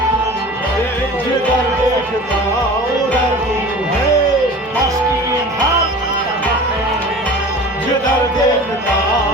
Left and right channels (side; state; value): both; normal; correlation 0.39